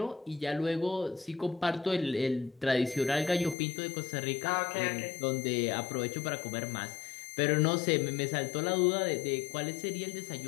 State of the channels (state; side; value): drops out; right; at 3.6 s